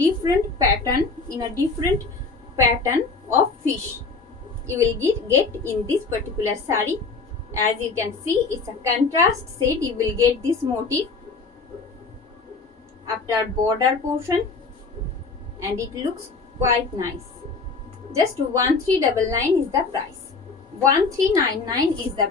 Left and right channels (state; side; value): quieter; right; 4.3 dB